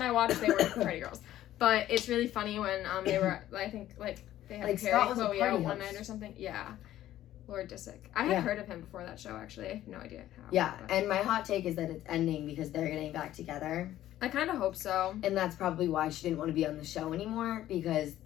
I watched, they weren't party girls. But it's really funny when they were, I think, like, they had Like, Perry Scott was a Chloe party out one host. night or something. Yeah. Lord Disick. I had heard of him before that show, actually. I have no idea how. Yeah, but and my hot take is that it's ending because they're getting back together. I kind of hope so. And that's probably why she didn't want to be on the show anymore, because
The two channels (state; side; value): quieter; right; 13.3 dB